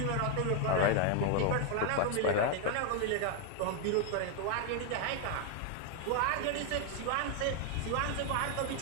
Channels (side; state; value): both; different; correlation 0.01